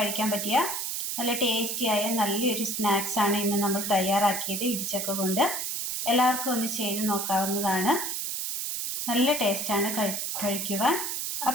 പറ്റിയ നല്ല ടേസ്റ്റിയായ നല്ലൊരു സ്നാക്സ് ആണ് ഇന്ന് നമ്മൾ തയ്യാറാക്കിയത് ഇടിച്ചക്ക കൊണ്ട്. എല്ലാവർക്കും ഒന്ന് ചെയ്ത് നോക്കാവുന്നതാണ്. നല്ല ടേസ്റ്റാണ് കഴിക്കുവാൻ.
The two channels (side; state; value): right; noise; hiss, 2 dB below the sound